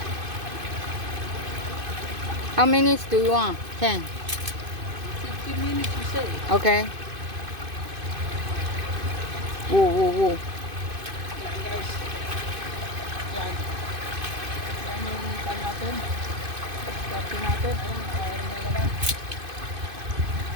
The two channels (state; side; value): late; left; 2.5 ms